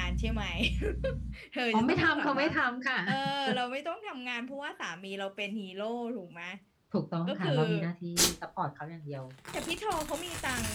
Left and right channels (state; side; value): identical; both; correlation 1.00